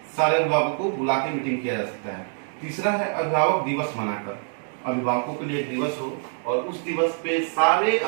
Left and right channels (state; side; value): silent; left; 57 dB below the other